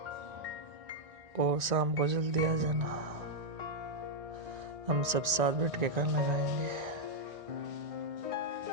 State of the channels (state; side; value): late; left; 1.9 ms